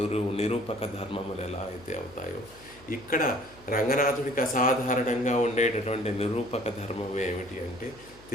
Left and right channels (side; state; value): left; noise; hum, 24 dB below the sound